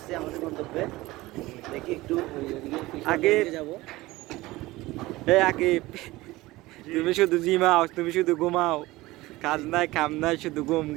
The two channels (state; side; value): quieter; left; 19.2 dB